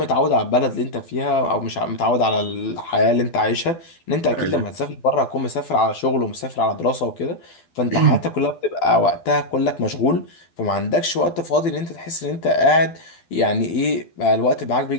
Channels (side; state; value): right; late; 12 ms